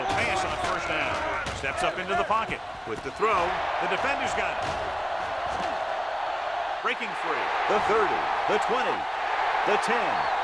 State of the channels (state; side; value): identical; both; correlation 1.00